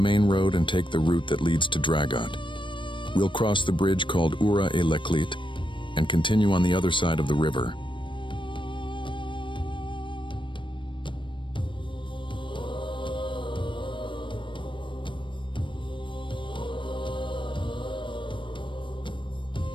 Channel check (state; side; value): late; right; 0.24 ms